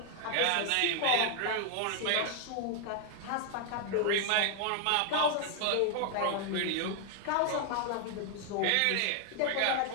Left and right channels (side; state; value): both; different; correlation 0.00